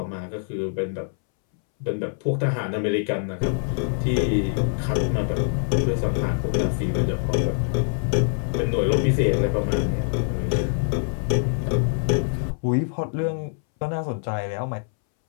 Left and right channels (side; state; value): right; silent; 62 dB below the other